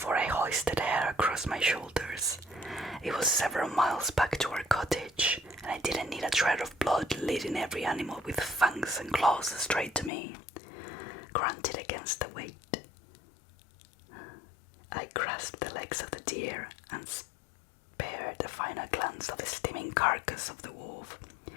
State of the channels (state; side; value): drops out; right; at 10.1 s